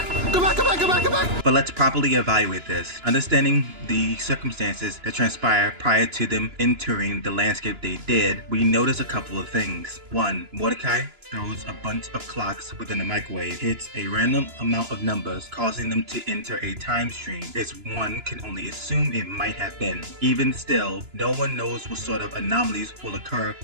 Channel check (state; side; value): late; left; 2.9 ms